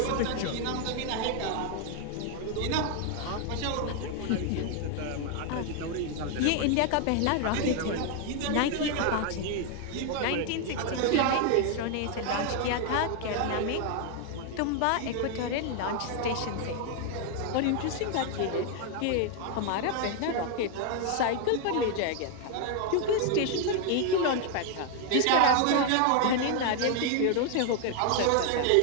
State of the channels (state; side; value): different; both; correlation 0.00